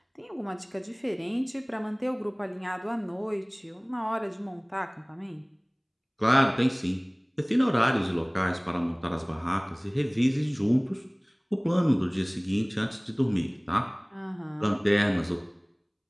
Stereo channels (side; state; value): both; identical; correlation 1.00